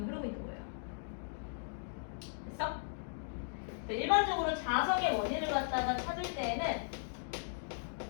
흐르고 있는 거예요. 됐어? 일반적으로 자석의 원인을 갖다가 찾을 때에는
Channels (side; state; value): right; silent; digital silence